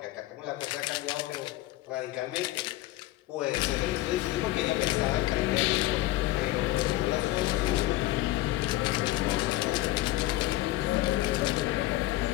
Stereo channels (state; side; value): quieter; right; 16.8 dB